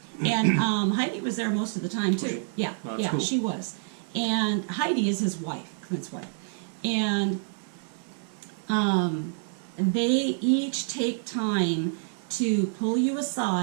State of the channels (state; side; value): silent; left; digital silence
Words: And Heidi was there most of the time, too. Was she? Yeah, Oh, that's cool. she was. And Heidi is his wife, Clint's wife. And they each take time to pull you